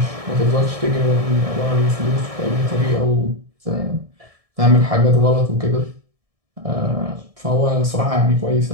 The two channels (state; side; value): late; left; 1.7 ms